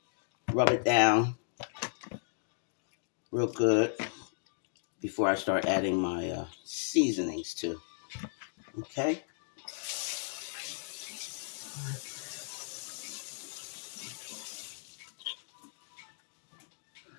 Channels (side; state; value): right; silent; digital silence